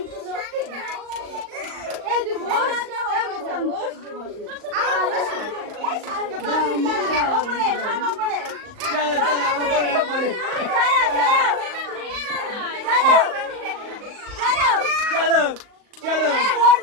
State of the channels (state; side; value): late; left; 38 ms